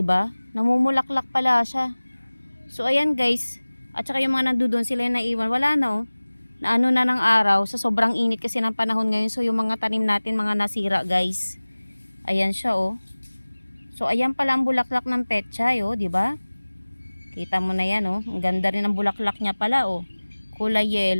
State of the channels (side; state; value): both; inverted; correlation -1.00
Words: ba? Namumulaklak pala siya. So ayan, guys. At saka yung mga nandoon sila yung naiwan, wala na, oh. Na ano na ng araw, sa sobrang init kasi ng panahon ngayon. So yung mga tanim natin, mga nasira, guys. Ayan siya, oh. So ayan pala ang bulaklak ng pechay, oh, di ba? Kita mo na yan, oh. Ang ganda rin ang bulaklak niya pala, oh. Kulay